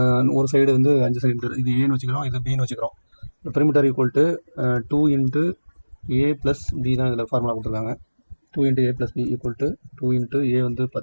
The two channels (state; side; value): inverted; both; correlation -1.00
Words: ஒரு சைடு வந்து 5 சென்டிமீட்டர். இது ஏன்னு வச்சுக்கிறோம், இது பின்னு வச்சுக்கிறோம். Perimeter equal to 2 into A plus B தான் இதில் ஃபார்முலா கொடுத்துருக்காங்க. 2 into A plus B equal to 2 into A வந்து